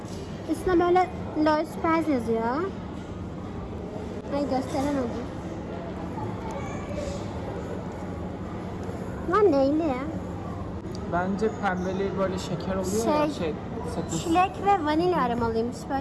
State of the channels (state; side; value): identical; both; correlation 1.00